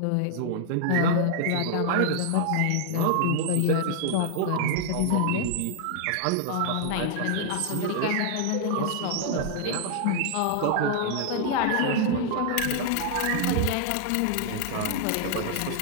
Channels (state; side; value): different; both; correlation 0.00